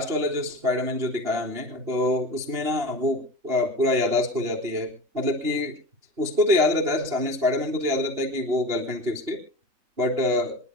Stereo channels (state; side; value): late; left; 2.9 ms